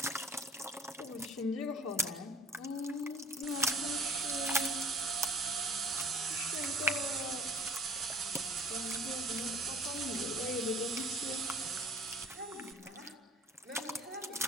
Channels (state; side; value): normal; both; correlation 0.50